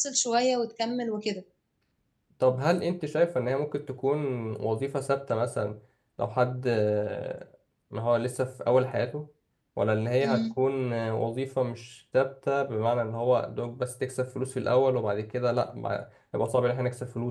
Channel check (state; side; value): identical; both; correlation 1.00